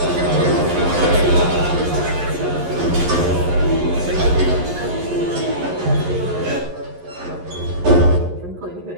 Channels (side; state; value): left; late; 11 ms